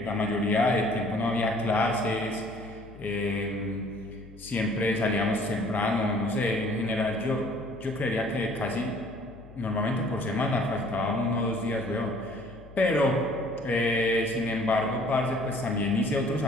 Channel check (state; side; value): noise; left; hum, 19 dB below the sound